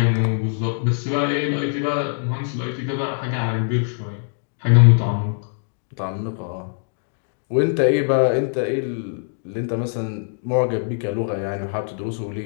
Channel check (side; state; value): right; silent; digital silence